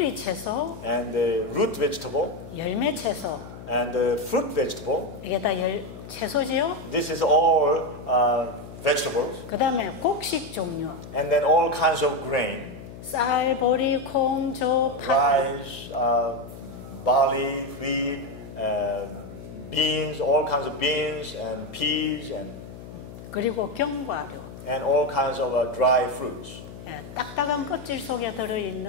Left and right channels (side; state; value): left; noise; hum, 14 dB below the sound